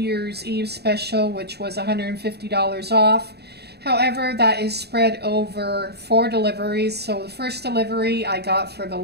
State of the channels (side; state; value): left; late; 0.48 ms